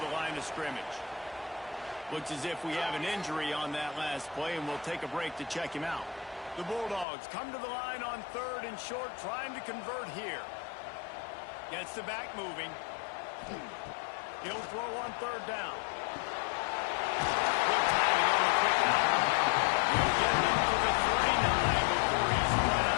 the line of scrimmage. Looks as if we have an injury on that last play, and we'll take a break to check him out. The Bulldogs come to the line on 3rd and short, trying to convert here. Gets the back moving. He'll throw on 3rd down. Good timing on the quick out. He'll get it up to the 39 before he's run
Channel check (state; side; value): drops out; right; at 7.1 s